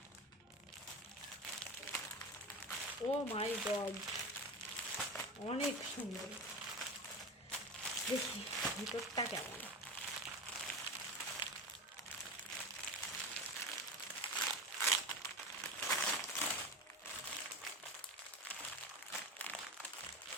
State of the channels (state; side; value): normal; both; correlation 0.24